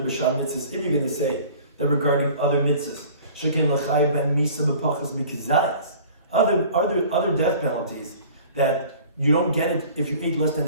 to say that regarding other mitzvahs, shekin l'chayv ben misa b'pachas mikizayas, other death penalties that you don't get it if you ate less than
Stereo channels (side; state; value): both; inverted; correlation -0.46